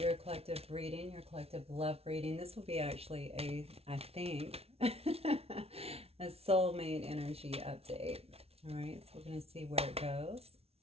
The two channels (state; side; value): late; left; 0.30 ms